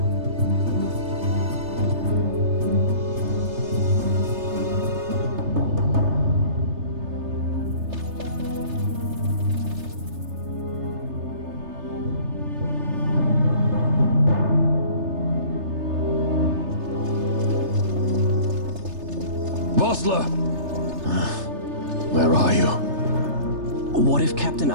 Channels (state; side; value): late; left; 3.3 ms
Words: Where are you? What if Captain